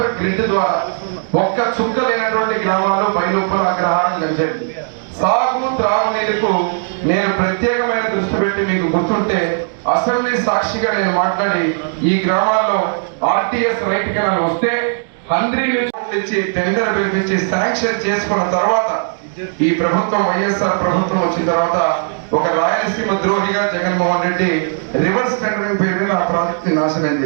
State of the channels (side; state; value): left; silent; digital silence